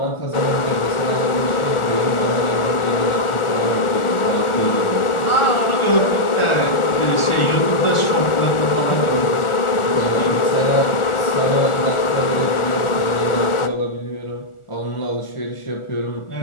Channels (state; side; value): late; right; 1.4 ms